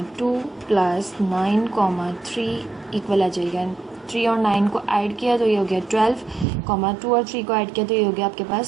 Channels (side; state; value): left; drops out; at 6.5 s